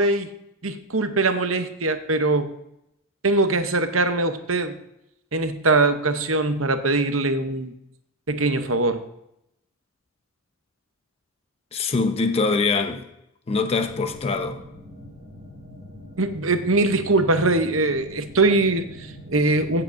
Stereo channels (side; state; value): both; normal; correlation 0.07